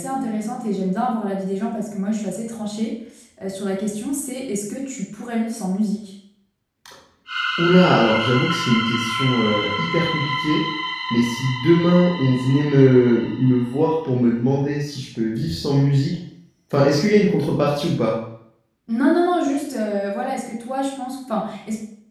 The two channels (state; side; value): identical; both; correlation 1.00